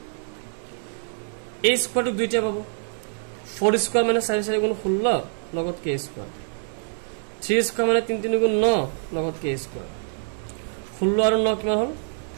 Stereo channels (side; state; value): left; silent; digital silence